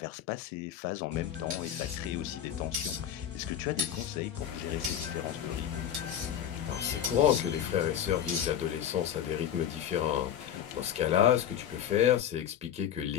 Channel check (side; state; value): right; quieter; 9.9 dB